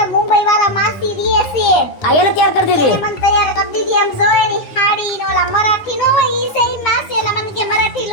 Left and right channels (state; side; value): late; right; 9.7 ms